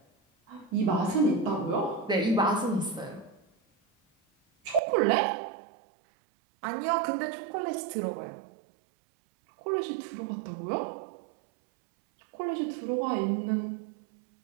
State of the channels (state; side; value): drops out; left; at 4.8 s